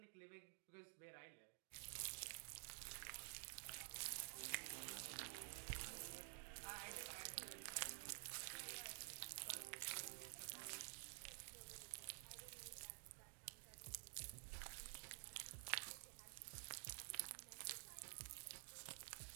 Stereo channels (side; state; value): left; silent; digital silence